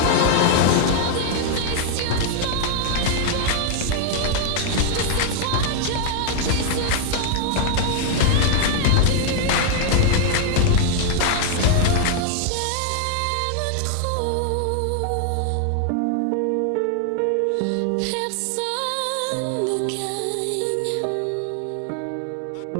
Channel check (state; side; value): different; both; correlation 0.00